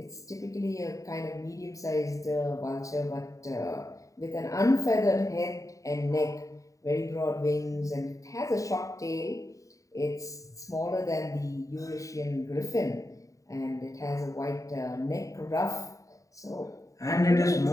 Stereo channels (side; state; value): right; late; 0.16 ms